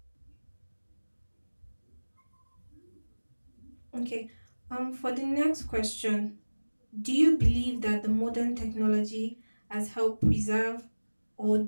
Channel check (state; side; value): inverted; both; correlation -1.00